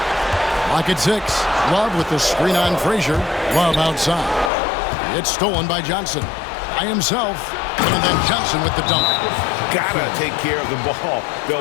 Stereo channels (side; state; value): right; drops out; at 4.5 s